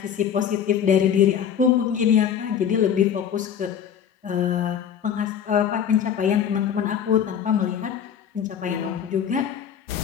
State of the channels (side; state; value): right; quieter; 8.5 dB